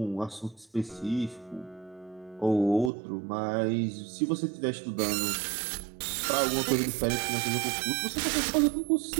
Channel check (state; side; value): drops out; left; at 2.9 s